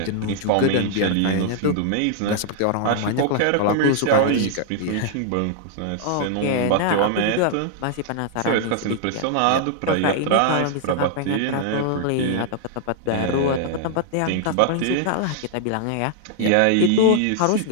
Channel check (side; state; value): both; different; correlation -0.01